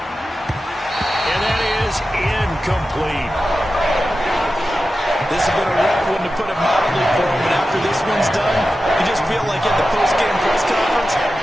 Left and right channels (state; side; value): normal; both; correlation 0.93